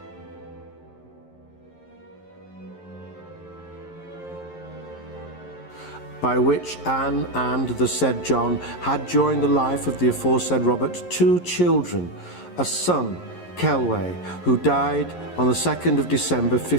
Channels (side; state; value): right; late; 11 ms